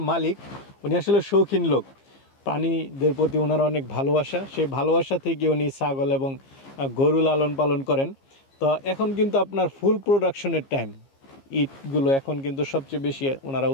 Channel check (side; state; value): right; late; 15 ms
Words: মালিক উনি আসলে শৌখিন লোক, প্রাণীদের প্রতি ওনার অনেক ভালোবাসা। সেই ভালোবাসা থেকে উনি ছাগল এবং গরু লালন পালন করেন। তো এখন কিন্তু আপনার ফুল প্রোডাকশনের টাইম, ইটগুলো এখন কিন্তু সবচেয়ে বেশি ওনারা